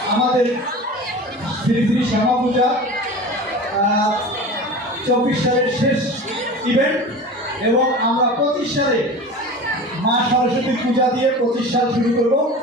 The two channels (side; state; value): both; normal; correlation 0.34